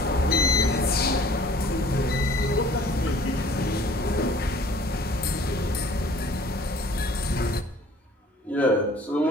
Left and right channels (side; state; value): both; normal; correlation 0.52